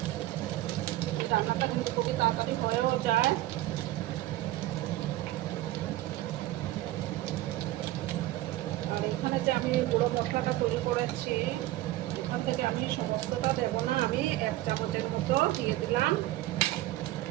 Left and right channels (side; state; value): left; quieter; 16.2 dB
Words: রান্নাটা কিন্তু খুবই তাড়াতাড়ি হয়েও যায়। আর এখানে যে আমি গুঁড়ো মশলাটা তৈরি করেছি, এখান থেকে আমি সমস্তটা দেবো না, আমি 1 চামচের মতো দিয়ে দিলাম।